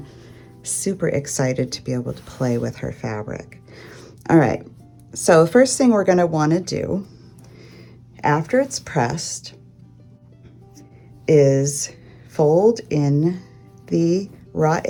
super excited to be able to play with her fabric. All right, so the first thing we're going to want to do after it's pressed is fold in the raw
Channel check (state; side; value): identical; both; correlation 1.00